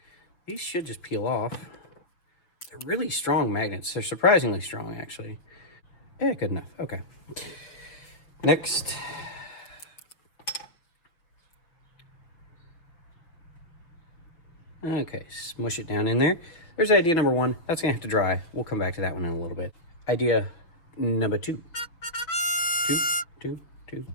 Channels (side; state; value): right; late; 6.1 ms